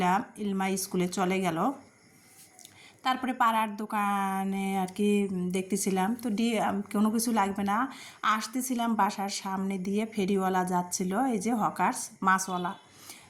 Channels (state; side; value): identical; both; correlation 1.00